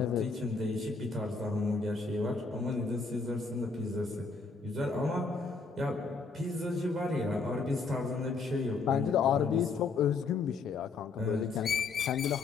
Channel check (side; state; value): right; quieter; 4.4 dB